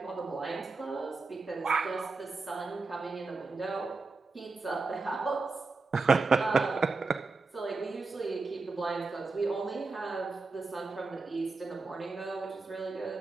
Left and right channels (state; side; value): quieter; left; 4.0 dB